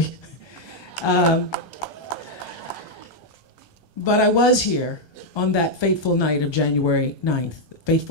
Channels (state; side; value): late; right; 1.2 ms